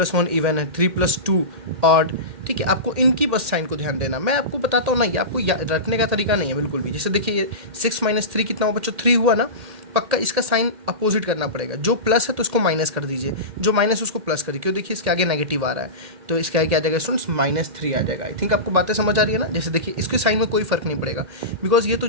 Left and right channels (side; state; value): left; late; 1.8 ms